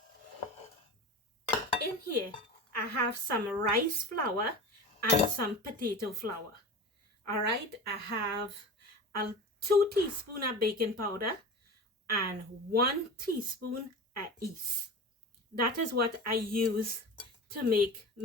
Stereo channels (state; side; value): normal; both; correlation 0.31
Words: in here, I have some rice flour and some potato flour. All right, I have a 2 teaspoons of baking powder and 1 teaspoon of yeast. That is what I use to make